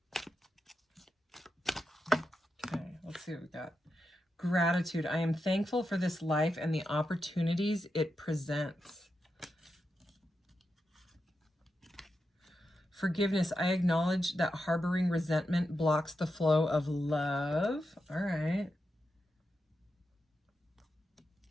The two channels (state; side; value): normal; both; correlation 0.87